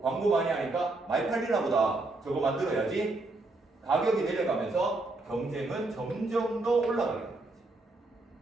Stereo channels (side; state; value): left; quieter; 3.0 dB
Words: 광고 많이 하니까 많이 팔리나 보다. 저거 만들어야지. 가격이 내려가면서 경쟁은 점점 더 올라가게 되는 거지.